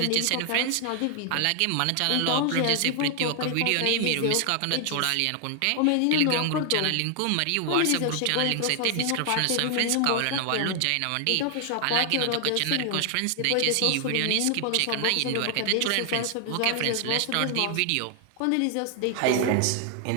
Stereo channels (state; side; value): different; both; correlation 0.00